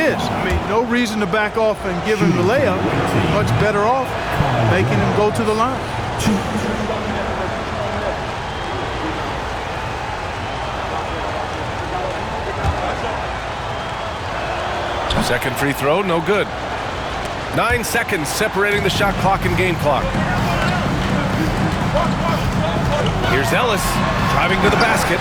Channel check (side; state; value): both; identical; correlation 1.00